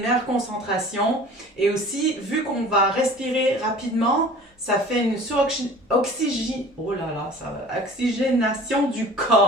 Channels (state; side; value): normal; both; correlation 0.44